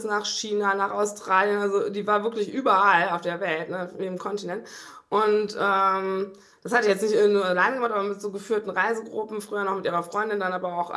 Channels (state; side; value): identical; both; correlation 1.00